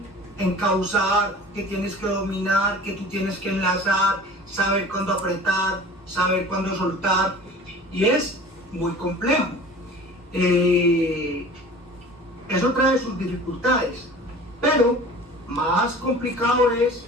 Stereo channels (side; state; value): both; normal; correlation 0.42